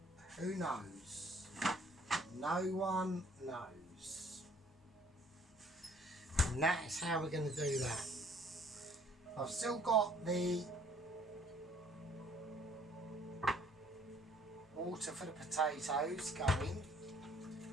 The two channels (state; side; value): normal; both; correlation 0.59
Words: who knows? No one knows. And that is how we're going to do that. I've still got the water for the potatoes going.